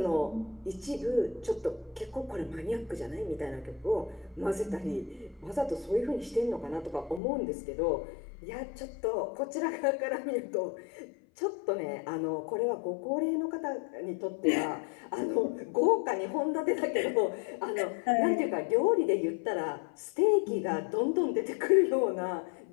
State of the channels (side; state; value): right; drops out; at 7.2 s